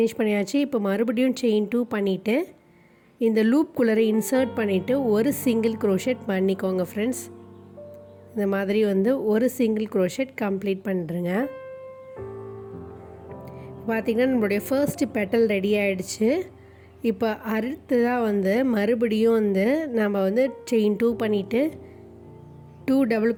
பண்ணியாச்சு. இப்போ மறுபடியும் செயின் 2 பண்ணிவிட்டு இந்த லூப்குள்ளே இன்சர்ட் பண்ணிவிட்டு ஒரு சிங்கிள் crochet பண்ணிக்கோங்க ஃப்ரெண்ட்ஸ். இந்த மாதிரி வந்து ஒரு சிங்கிள் crochet கம்ப்ளீட் பண்ணுறேங்க. பார்த்திங்கன்னா நம்மளுடைய ஃபர்ஸ்ட் பெட்டல் ரெடி ஆகிடுச்சு. இப்போ அடுத்ததாக வந்து மறுபடியும் வந்து நம்ம வந்து செயின் 2 பண்ணிவிட்டு 2 டபுள்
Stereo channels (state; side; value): identical; both; correlation 1.00